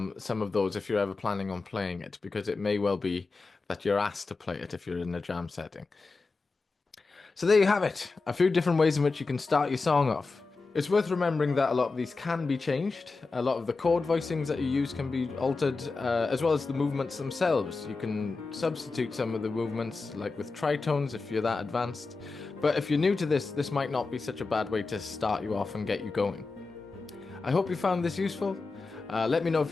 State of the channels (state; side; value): quieter; right; 3.9 dB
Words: of those if you're ever planning on playing it, because it may well be that you're asked to play it if you're in a jam setting. So there you have it, a few different ways in which you can start your song off. It's worth remembering that a lot of these can be changed. A lot of the chord voicings that you use can be altered, as well as the movements themselves. You can substitute some of the movements, like with tritones if you're that advanced. But if you're new to this, this might not be such a bad way to start you off and get you going. I hope you found this useful. Let me know if